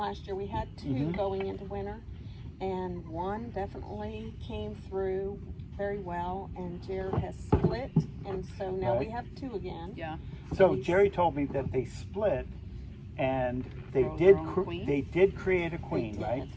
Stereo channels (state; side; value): identical; both; correlation 1.00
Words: year. We had two Mhm. going into winter, and one definitely came through very well, and Jared has split, and so now we Right. have two again. Yeah. So Jerry told me that they split, and they Grow did. their own queen? They did create a queen, did. right?